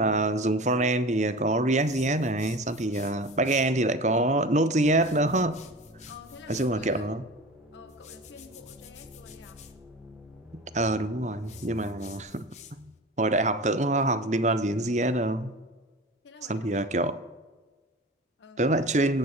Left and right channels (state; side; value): normal; both; correlation 0.34